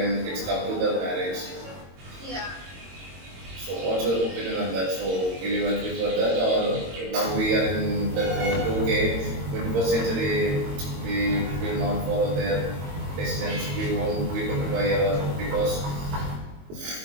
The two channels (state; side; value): late; left; 22 ms